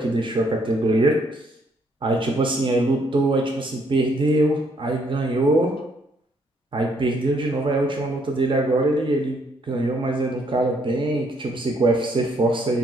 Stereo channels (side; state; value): both; normal; correlation 0.69